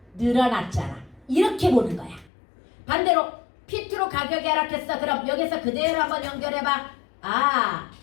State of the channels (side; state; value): right; drops out; at 2.3 s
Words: 늘어났잖아. 이렇게 보는 거야. 반대로 P2로 가격이 하락했어. 그럼 여기서 그대로 한번 연결해봐.